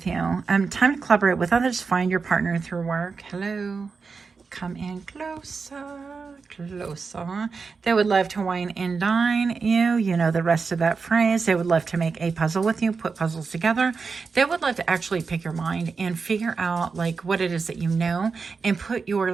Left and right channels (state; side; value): quieter; left; 4.9 dB